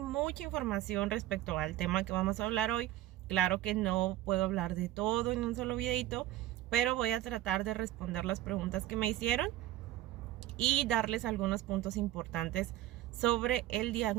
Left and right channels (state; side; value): quieter; left; 14.5 dB